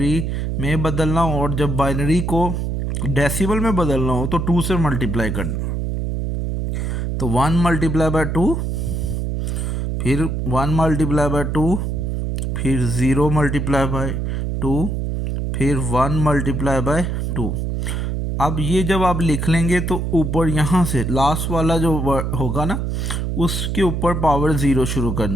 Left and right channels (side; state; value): right; noise; hum, 1 dB below the sound